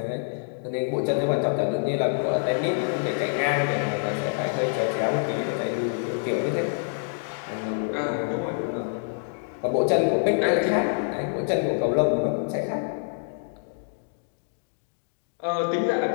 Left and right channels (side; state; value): right; silent; digital silence